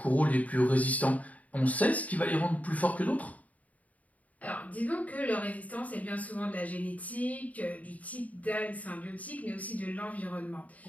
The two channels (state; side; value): late; right; 0.071 ms